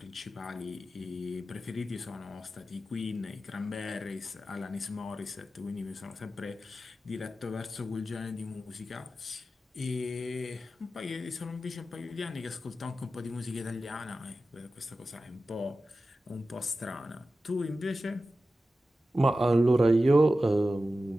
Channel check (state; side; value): normal; both; correlation 0.93